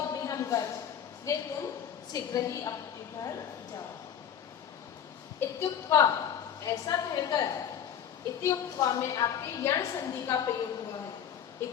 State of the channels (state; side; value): quieter; right; 9.0 dB